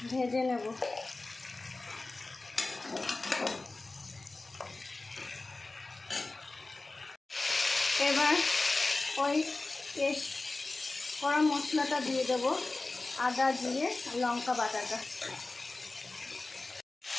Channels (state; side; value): quieter; right; 3.2 dB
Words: ভেজে নেব। এবার ওই পেস্ট করা মশলাটা দিয়ে দেবো, আদা জিরে লঙ্কা বাটাটা।